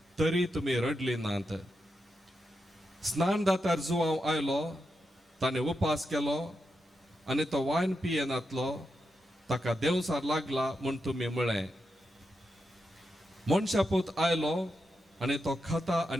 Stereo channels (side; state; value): both; normal; correlation 0.86